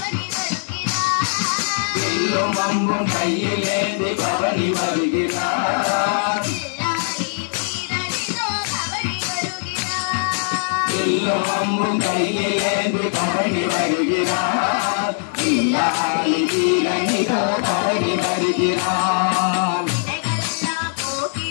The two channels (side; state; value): right; silent; digital silence